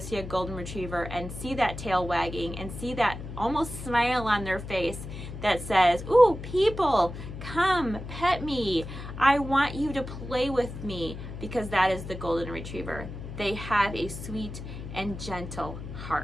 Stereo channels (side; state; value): left; noise; hum, 10 dB below the sound